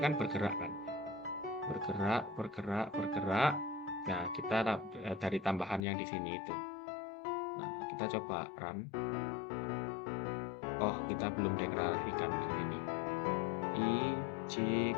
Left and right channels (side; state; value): right; drops out; at 5.9 s